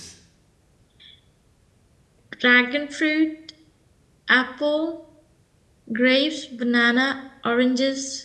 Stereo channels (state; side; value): identical; both; correlation 1.00